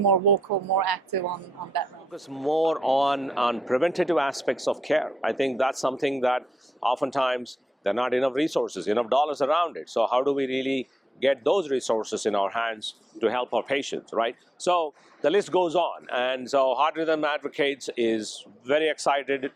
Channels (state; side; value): normal; both; correlation 0.85